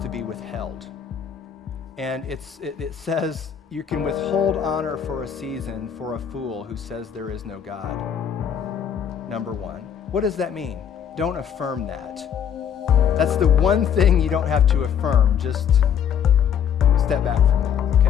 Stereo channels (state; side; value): quieter; right; 8.3 dB